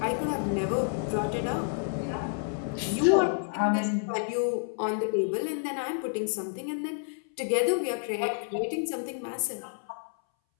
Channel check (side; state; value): right; silent; 58 dB below the other